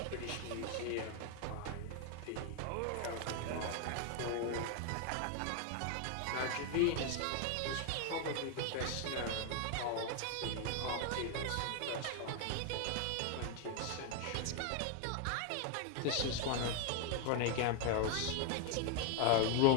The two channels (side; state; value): both; different; correlation 0.01